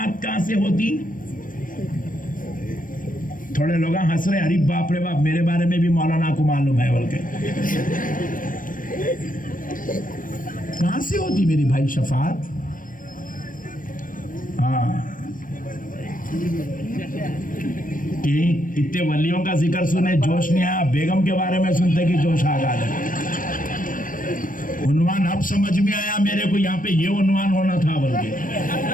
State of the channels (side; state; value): right; late; 0.40 ms